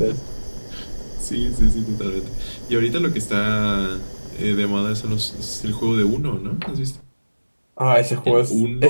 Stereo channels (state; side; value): inverted; both; correlation -1.00